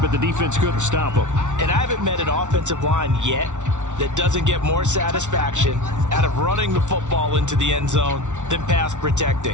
the defense couldn't stop them. And I haven't met an offensive line yet that doesn't get more satisfaction out of running the football into the end zone than pass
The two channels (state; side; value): late; left; 0.85 ms